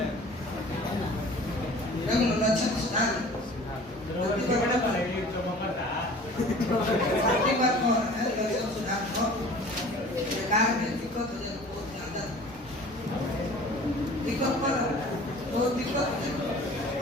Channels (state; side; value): normal; both; correlation 0.45